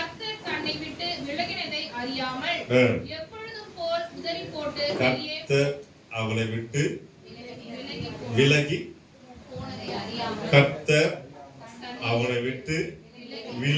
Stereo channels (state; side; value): identical; both; correlation 1.00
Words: தன்னை விட்டு விலகினதை அறியாமல் எப்பொழுதும் போல் உதறி போட்டு கர்த்தர் அவளை விட்டு விலகி போனதை அறியாமல் கர்த்தர் அவனை விட்டு